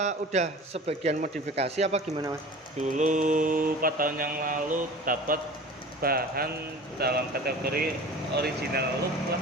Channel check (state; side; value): normal; both; correlation 0.39